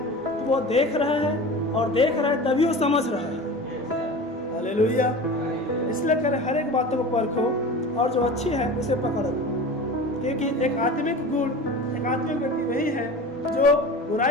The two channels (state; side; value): normal; both; correlation 0.34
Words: तो वो देख रहा है, और देख रहा है तभी वो समझ रहा है। हालेलुया। इसलिए करें हर एक बातों को परखो और जो अच्छी है उसे पकड़ो, क्योंकि एक आत्मिक गुण, एक आत्मिक व्यक्ति वही है जो